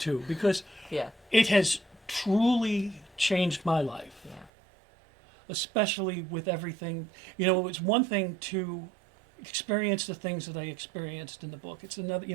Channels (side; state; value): left; drops out; at 4.5 s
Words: because Yeah. it has truly changed my life. Yeah. Especially with everything. It was one thing to experience the things that I experienced in the book. It's another,